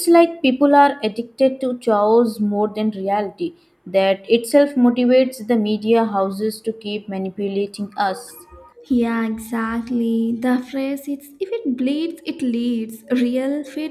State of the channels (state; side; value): identical; both; correlation 1.00